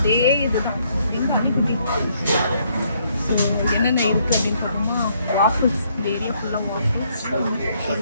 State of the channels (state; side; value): inverted; both; correlation -0.71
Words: இதுதான். என்னென்ன இருக்குது அப்படின்னு பார்த்தோம்னா வாஃபிள்ஸ், இந்த ஏரியா ஃபுல்லாக வாஃபிள்ஸ்.